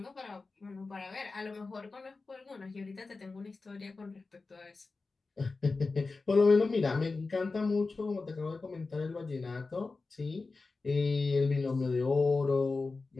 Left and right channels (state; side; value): quieter; right; 3.9 dB